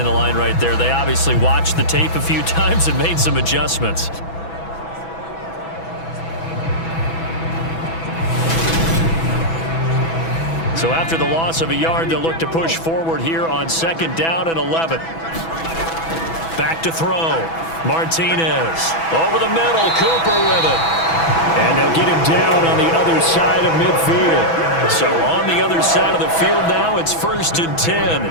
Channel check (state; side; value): late; right; 6.1 ms